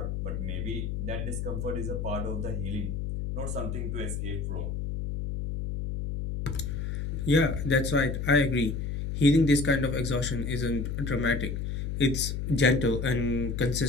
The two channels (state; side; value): noise; left; hum, 3 dB below the sound